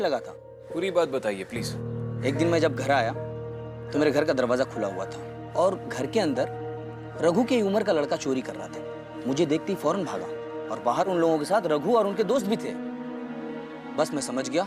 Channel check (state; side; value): identical; both; correlation 1.00